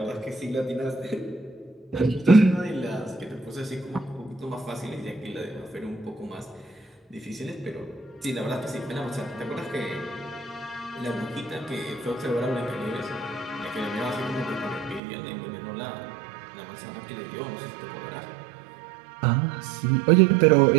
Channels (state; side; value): drops out; left; at 15.0 s